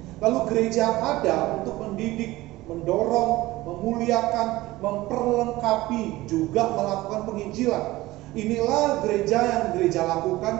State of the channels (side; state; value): left; quieter; 18.2 dB